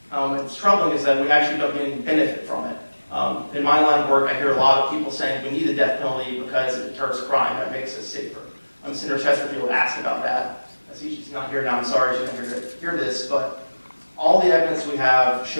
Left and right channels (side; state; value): both; inverted; correlation -1.00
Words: What's troubling is that we actually don't get any benefit from it. In my line of work, I hear a lot of people saying we need the death penalty because it deters crime, that makes us safer. Senator Chesterfield asked about that. She's not here now, I'm sorry she's not here to hear this, but all the evidence we have